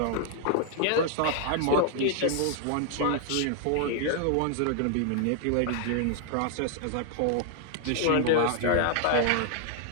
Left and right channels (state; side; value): different; both; correlation 0.00